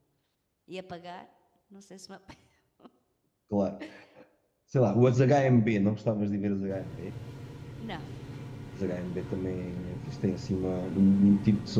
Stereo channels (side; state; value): both; identical; correlation 1.00